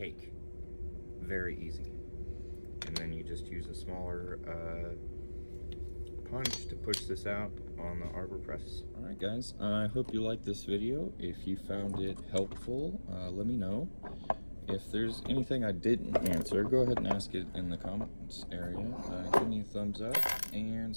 Very easy. And then you just use a smaller punch to push this out on the arbor press. Alright guys, I hope you liked this video. If you found it helpful, let me know. If there's anything I didn't answer, go ahead and ask it in the comments area. Give me a thumbs up and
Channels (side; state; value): both; inverted; correlation -1.00